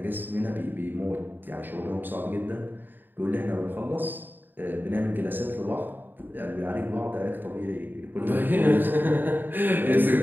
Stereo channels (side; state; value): left; late; 0.092 ms